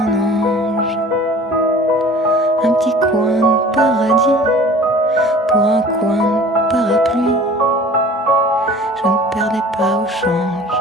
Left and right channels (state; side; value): normal; both; correlation 0.45